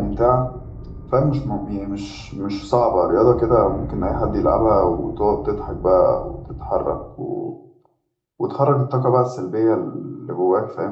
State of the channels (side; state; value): both; identical; correlation 1.00